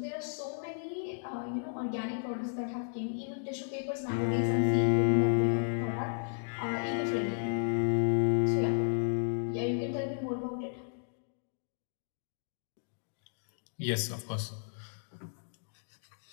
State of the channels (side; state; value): right; silent; digital silence